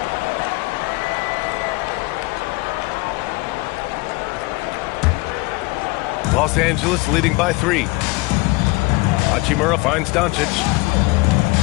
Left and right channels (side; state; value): right; quieter; 23.6 dB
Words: Los Angeles leading by 3. Hachimura finds Doncic.